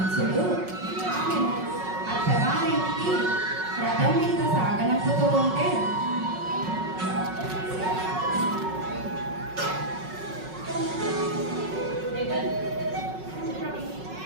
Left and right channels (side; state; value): left; late; 5.4 ms